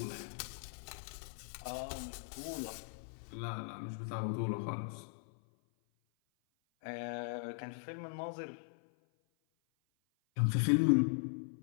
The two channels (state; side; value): silent; right; 52 dB below the other